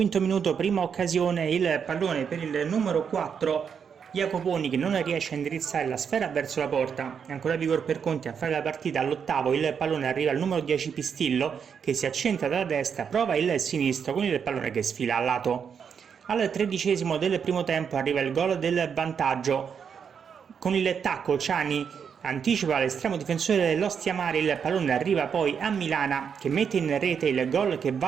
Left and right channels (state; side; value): quieter; left; 7.0 dB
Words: minuto, prima occasione, il pallone per il numero 4 Jacoponi, che non riesce a indirizzare la sfera verso la porta. Ancora Vigor per Conti a fare la partita. All'ottavo il pallone arriva al numero 10 Pistillo, che si accentra dalla destra, prova il sinistro con il pallone che sfila al lato. Al 13° del primo tempo arriva il gol del vantaggio. Con il tacco Ciani anticipa l'estremo difensore dell'Ostia Mare, il pallone arriva poi a Milana, che mette in rete il gol che